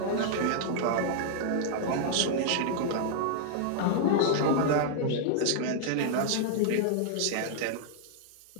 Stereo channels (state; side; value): different; both; correlation -0.01